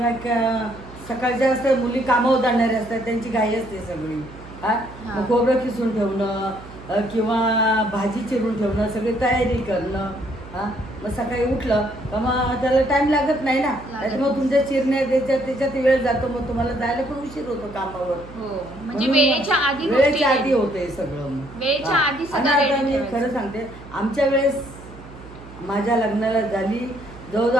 सकाळच्या असतात, मुली कामावर जाणारे असतात, त्यांची घाई असते सगळी. मग खोबरं किसून ठेवणं किंवा भाजी चिरून ठेवणं, सगळी तयारी करणं. मग सकाळी उठलं का मग त्याला टाइम लागत नाही ना, मग तुमच्या चिरण्या त्याच्यात वेळ जातो, मग तुम्हाला जायला पण उशीर होतो कामावर. म्हणजे वेळेच्या आधी होते सगळं. वेळेच्या आधी आता मी खरं सांगते, आमच्या वेळेस माझ्या लग्नाला झाली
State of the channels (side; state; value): right; noise; hum, 17 dB below the sound